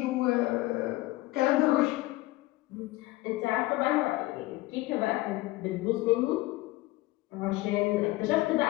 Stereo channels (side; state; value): right; quieter; 19.3 dB